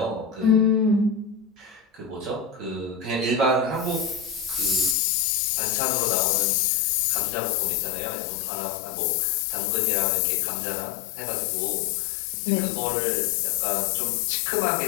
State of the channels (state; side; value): drops out; right; at 5.0 s